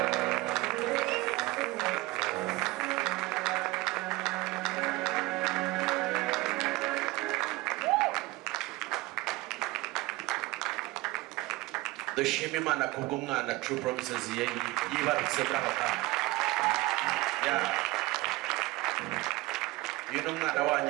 Dushima Imana kubw'umwana True Promises yibarutse muri aka kanya. Uyu ni umwana wanyu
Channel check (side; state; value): left; quieter; 20.9 dB